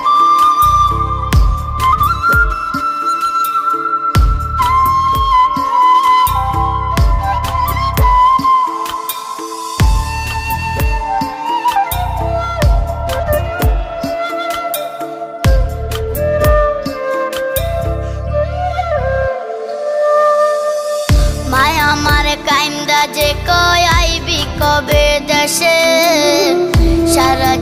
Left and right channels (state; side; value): identical; both; correlation 1.00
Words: মায়া আমারে কাইন্দা যে কয় আইবি কবে দেশে, সারা